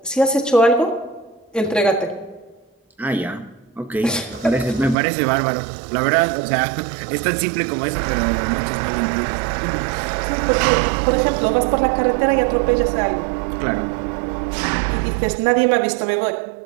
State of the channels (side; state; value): left; drops out; at 5.0 s